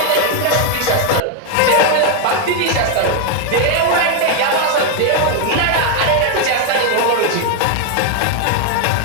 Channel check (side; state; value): both; different; correlation 0.01